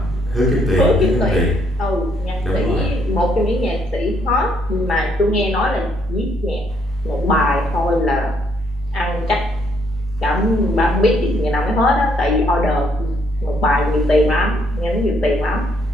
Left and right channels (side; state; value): both; normal; correlation 0.70